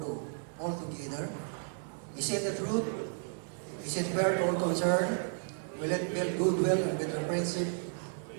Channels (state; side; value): silent; left; digital silence